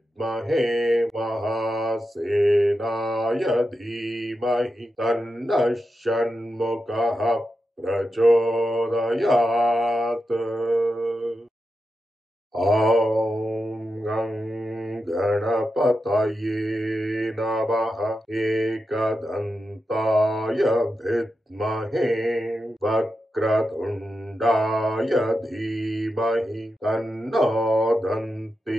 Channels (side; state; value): both; normal; correlation 0.89